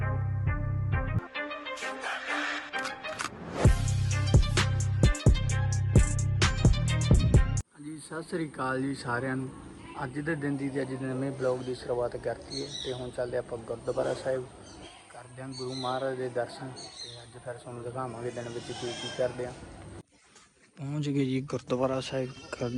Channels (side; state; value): both; identical; correlation 1.00